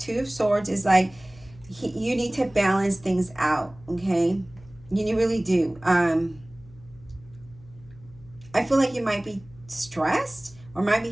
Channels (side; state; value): left; noise; hum, 23 dB below the sound